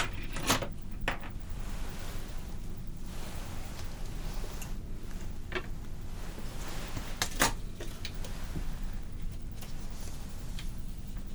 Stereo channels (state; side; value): identical; both; correlation 1.00